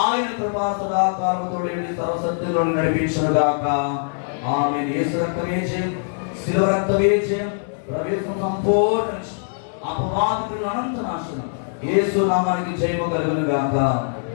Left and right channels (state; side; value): silent; right; 64 dB below the other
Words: ఆయన కృపా సదాకాలముతో సర్వసత్యంలో నడిపించును గాక. ఆమేన్. యేసు రక్తమే జయం, శిలువ రక్తమే జయం, ప్రవేశం సంపూర్ణ అపవాదికుల అనంత నాశనం. యేసు నామానికి జయము కలుగును గాక.